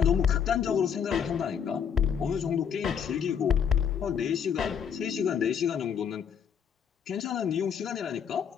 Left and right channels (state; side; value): quieter; right; 7.6 dB